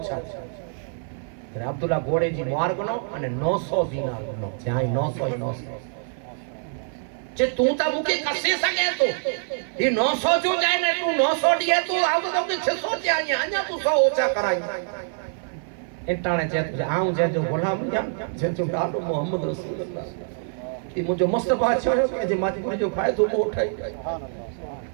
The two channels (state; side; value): silent; left; 57 dB below the other